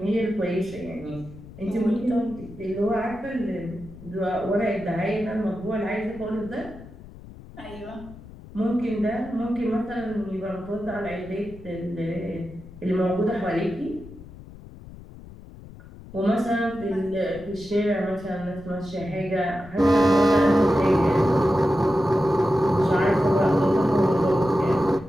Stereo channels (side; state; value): left; noise; rumble, 17 dB below the sound